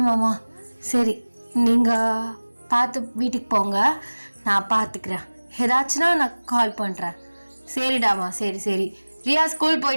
மாமா. சரி, நீங்கள் பார்த்து வீட்டுக்கு போங்க, நான் பார்த்துக்கிறேன். ஏதாச்சுன்னா நான் கால் பண்ணுறேன். சரிடாமா, சரி சரி. ரியா ஸ்கூல்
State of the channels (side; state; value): both; inverted; correlation -1.00